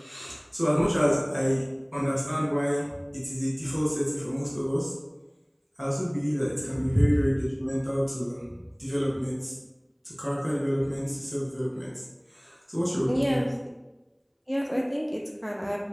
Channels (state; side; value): identical; both; correlation 1.00